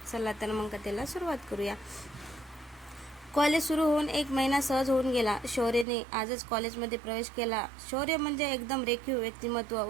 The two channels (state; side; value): drops out; left; at 5.9 s